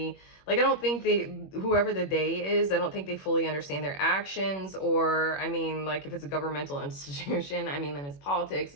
Like, I don't think whoever the they is, I don't think they fully understand their actions. Or, I mean, like, if it's a governmental institution, I mean, then it's politics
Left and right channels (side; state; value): right; late; 21 ms